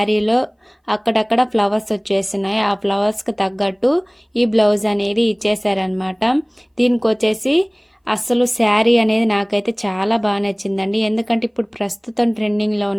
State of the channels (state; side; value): identical; both; correlation 1.00